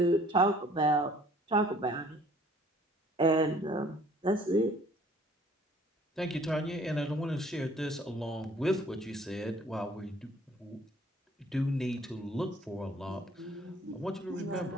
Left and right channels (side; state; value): both; normal; correlation 0.57